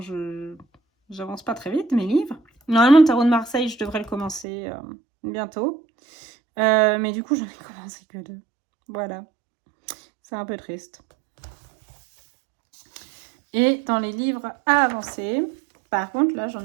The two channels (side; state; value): left; drops out; at 4.5 s